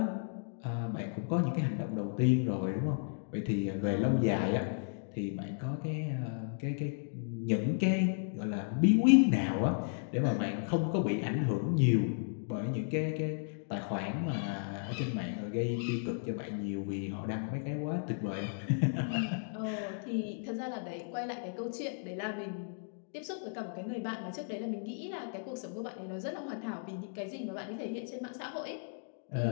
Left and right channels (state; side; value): silent; right; digital silence